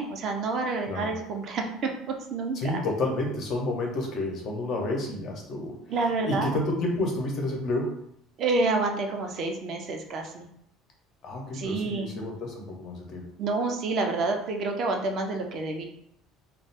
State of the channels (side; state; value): both; normal; correlation 0.44